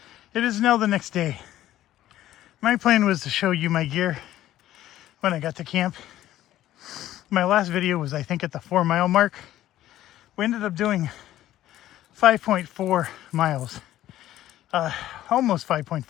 It is now the next day. My plan was to show you my gear when I got to camp. My last video was, I think, at the 4-mile mark. We ended up doing 5.4 miles, almost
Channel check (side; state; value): right; quieter; 13.5 dB